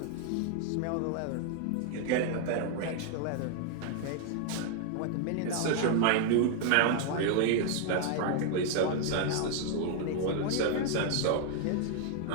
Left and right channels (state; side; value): different; both; correlation 0.00